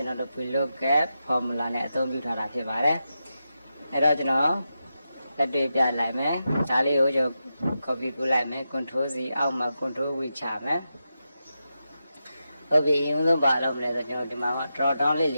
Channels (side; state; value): both; inverted; correlation -0.89